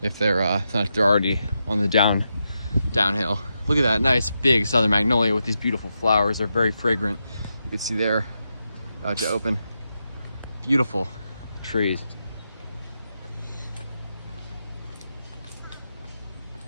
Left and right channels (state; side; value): inverted; both; correlation -0.86